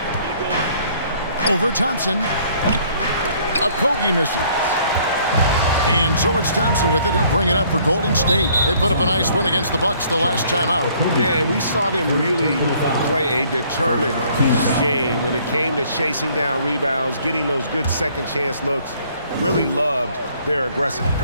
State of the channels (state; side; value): inverted; both; correlation -0.61